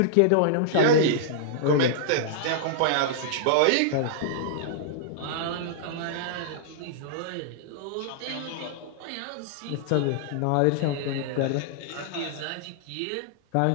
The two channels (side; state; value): both; different; correlation -0.01